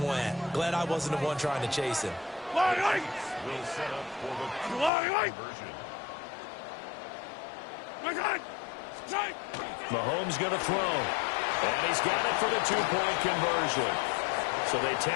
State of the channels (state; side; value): drops out; right; at 4.9 s